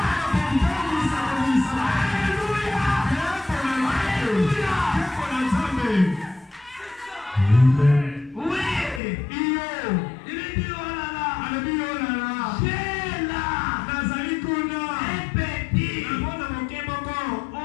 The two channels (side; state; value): right; drops out; at 9.0 s